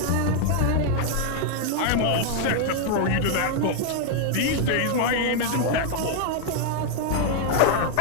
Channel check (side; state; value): both; different; correlation 0.00